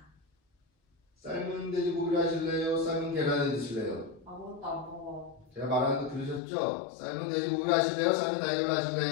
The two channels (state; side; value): drops out; right; at 6.4 s